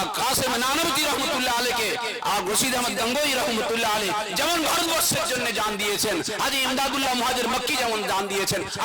কাসিম নানওতি রহমাতুল্লাহ আলাইহি আর রশিদ আহমদ গঙ্গোই রহমাতুল্লাহ আলাইহি যেমন ভারতবর্ষের জন্য জান দিয়েছেন, হাজী ইমদাদুল্লাহ মুহাজির মক্কি যেমন জান দিয়েছেন।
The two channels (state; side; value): identical; both; correlation 1.00